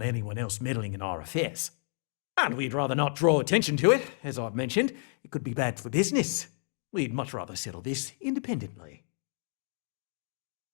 anyone else meddling in our affairs. And we'd rather not draw attention to it, as I've mentioned. It could be bad for business. We'd much rather settle this independently.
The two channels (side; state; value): right; silent; 57 dB below the other